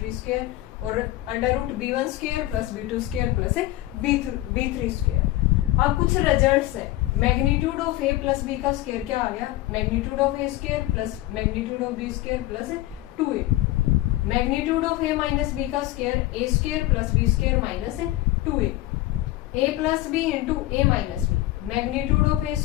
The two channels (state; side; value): quieter; right; 16.7 dB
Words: square और under root b1 square plus b2 square plus b3 square. अब कुछ रिजल्ट्स है, magnitude of a plus b का स्क्वायर क्या आ गया, magnitude of a square plus magnitude of b square plus 2a। Magnitude of a minus b का square a square plus b square minus 2a। A plus b into a minus b, magnitude of a